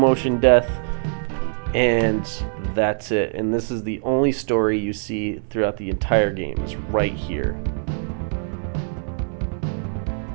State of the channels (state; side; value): silent; left; 64 dB below the other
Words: death, and that's it. And this is the only story you see throughout the entire game, is right here.